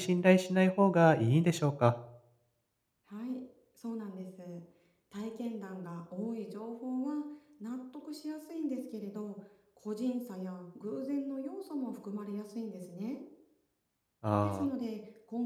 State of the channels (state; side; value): identical; both; correlation 1.00